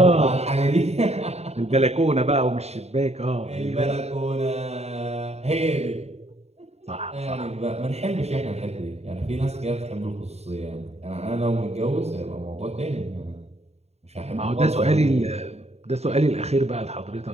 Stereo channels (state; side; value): late; left; 0.31 ms